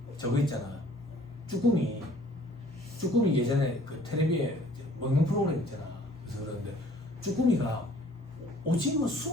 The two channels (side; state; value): both; normal; correlation 0.55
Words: 저거 있잖아. 쭈꾸미 예전에 그 텔레비에 먹는 프로그램 있잖아. 그래서 그러는데 쭈꾸미가 오징어